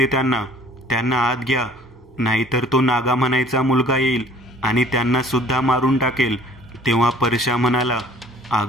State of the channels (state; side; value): normal; both; correlation 0.53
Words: त्यांना. त्यांना आत घ्या, नाहीतर तो नागा म्हणायचा मुलगा येईल आणि त्यांना सुद्धा मारून टाकेल. तेव्हा परशा म्हणाला,